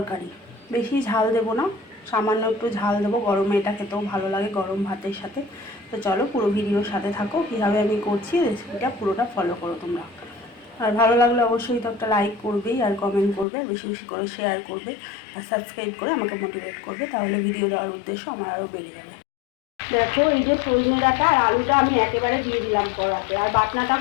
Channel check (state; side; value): drops out; right; at 13.5 s